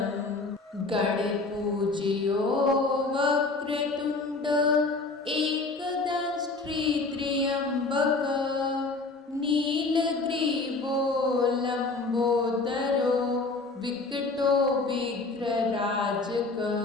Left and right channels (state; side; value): quieter; right; 3.6 dB